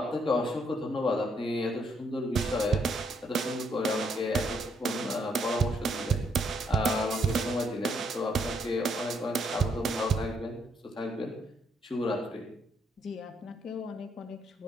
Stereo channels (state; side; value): normal; both; correlation 0.73